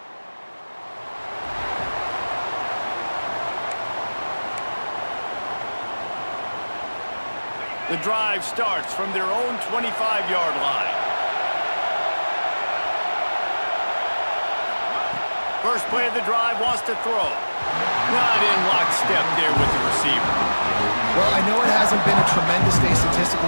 The drive starts from their own 25-yard line. First play of the drive, wants to throw. Not in lockstep there with the receiver. Well, I know it hasn't been a tremendous day statistically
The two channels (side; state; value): both; inverted; correlation -1.00